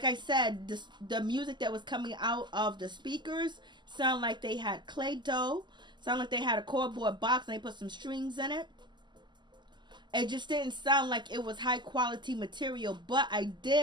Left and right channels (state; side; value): late; left; 0.21 ms